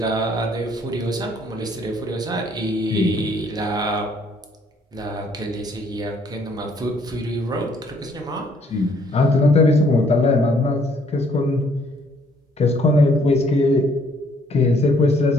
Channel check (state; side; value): normal; both; correlation 0.64